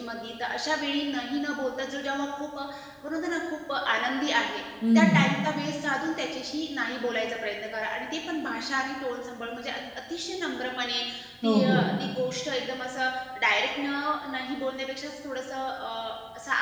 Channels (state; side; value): identical; both; correlation 1.00